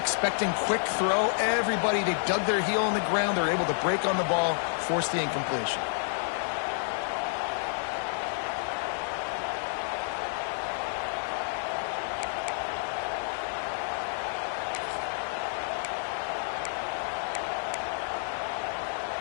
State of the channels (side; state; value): right; silent; digital silence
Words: quick throw. Everybody, they dug their heel on the ground. They're able to break on the ball, force the incompletion.